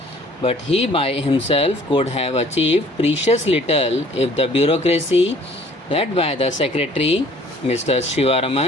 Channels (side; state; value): both; normal; correlation 0.55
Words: but he by himself could have achieved precious little if the bureaucracy led by the Secretary, Mr.